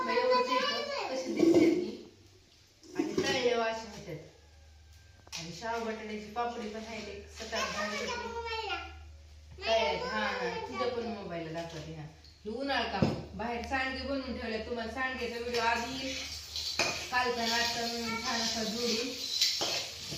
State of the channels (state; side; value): identical; both; correlation 1.00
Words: एवढंच येतं कशी दिसते ती आणि तळले वाशी होतात आणि शाव बटाट्याची पापडी पण आहे सकाळ काय हा तुझ्या पण मोबाईलला दाखवते हा हे उन्हाळ काम बाहेर सांडगे बनवून ठेवले तुम्हाला सांडग्याचा व्हिडिओ आधी कालचा नाश्ता म्हणून छान असा जोडून